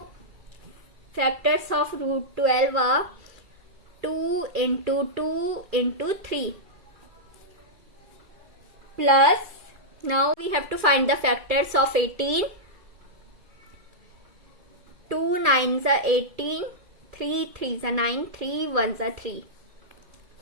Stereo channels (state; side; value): late; left; 2.3 ms